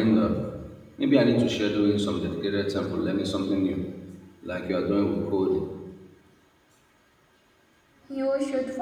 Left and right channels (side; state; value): both; identical; correlation 1.00